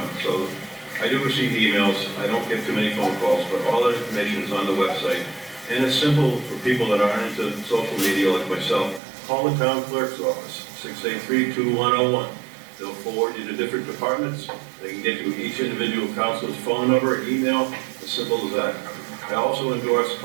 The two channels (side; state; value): left; drops out; at 9.0 s